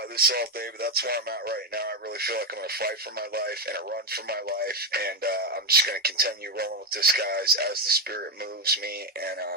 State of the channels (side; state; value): both; normal; correlation 0.09